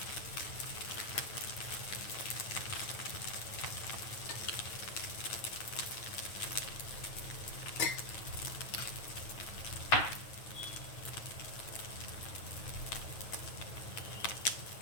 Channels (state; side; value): late; right; 9.3 ms